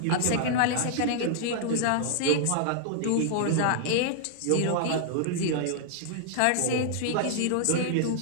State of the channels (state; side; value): different; both; correlation -0.01